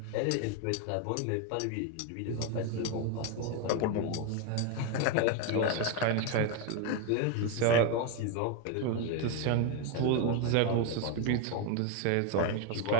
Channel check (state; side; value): different; both; correlation 0.02